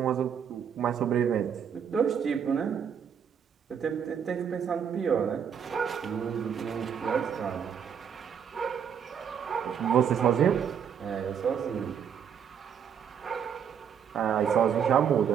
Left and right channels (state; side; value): quieter; left; 7.9 dB